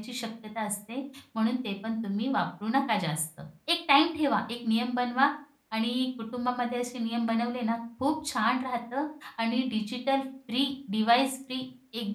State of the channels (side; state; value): both; identical; correlation 1.00